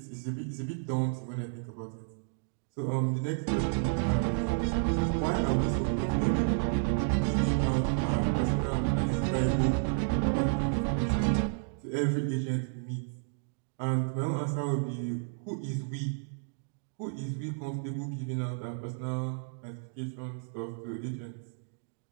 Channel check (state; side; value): silent; left; digital silence